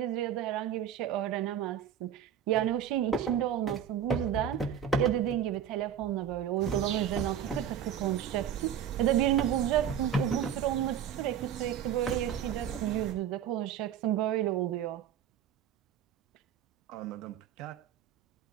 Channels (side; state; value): left; quieter; 9.2 dB